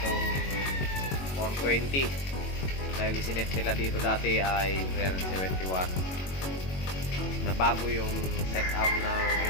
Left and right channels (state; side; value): late; right; 22 ms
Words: 420 dahil isinet nila dito dati ay 371 na bago yung setup ng